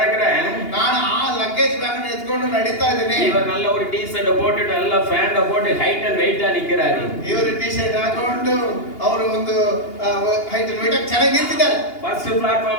ನಾನು ಆ ಲಗೇಜ್ ಬ್ಯಾಗ್ ಎತ್ಕೊಂಡು ನಡೀತಾ ಇದ್ದೇನೆ. இவர் நல்ல ஒரு டி-ஷர்ட் போட்டுட்டு நல்ல ಪ್ಯಾಂಟ್ போட்டு ಹೈಟ್ ಅಂಡ್ ವೆಯ್ಟ್ ನಿಂತಿದ್ದಾರೆ. ಇವರು ಟಿ-ಶರ್ಟ್ ಹಾಕೊಂಡು ಅವರು ಒಂದು ಹೈಟ್ ಅಂಡ್ ವೆಯ್ಟ್ ಚೆನ್ನಾಗಿ ನಿಂತಿದ್ದಾರೆ. ಫಸ್ಟ್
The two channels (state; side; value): late; right; 2.8 ms